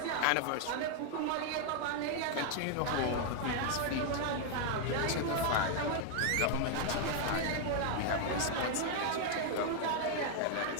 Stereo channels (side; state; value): both; different; correlation 0.00